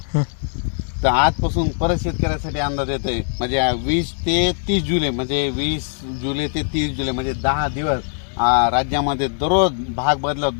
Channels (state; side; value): silent; right; 62 dB below the other